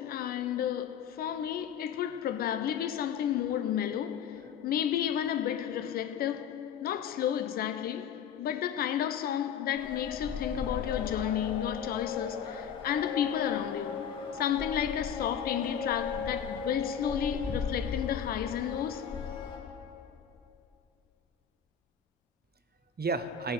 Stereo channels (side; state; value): right; quieter; 8.2 dB